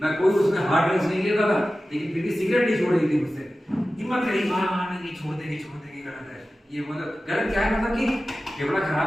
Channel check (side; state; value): both; normal; correlation 0.95